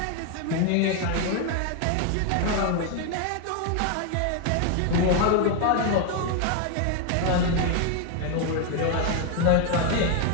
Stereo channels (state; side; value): different; both; correlation 0.01